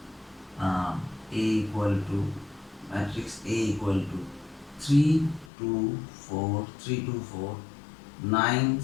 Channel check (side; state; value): right; drops out; at 5.5 s